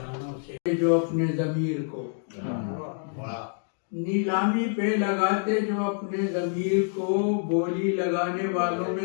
سے، جو اپنے ضمیر کو نیلامی پہ لگاتے، جو اپنے ضمیر کو بولی لگانے والوں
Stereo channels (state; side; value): silent; right; 60 dB below the other